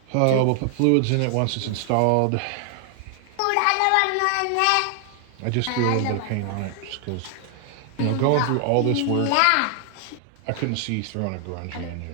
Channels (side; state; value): both; different; correlation 0.00